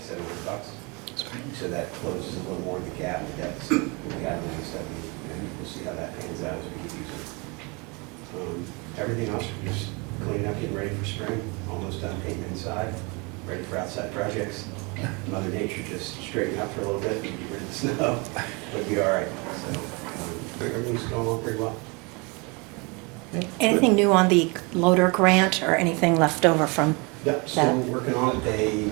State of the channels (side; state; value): left; quieter; 29.5 dB